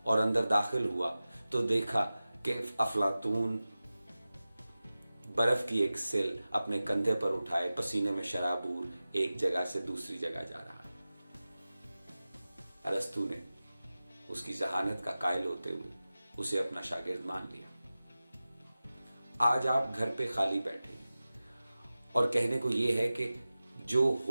और अंदर दाखिल हुआ तो देखा कि अफलातून बर्फ की एक सिल अपने कंधे पर उठाए पसीने में शराबूर एक जगह से दूसरी जगह जा रहा है। अरस्तु ने उसकी जहानत का कायल होते हुए उसे अपना शागिर्द मान लिया। आज आप घर पे खाली बैठे और कहने को ये है कि जो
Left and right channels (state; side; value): inverted; both; correlation -0.96